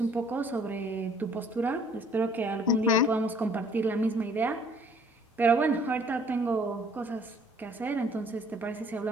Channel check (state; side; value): normal; both; correlation 0.58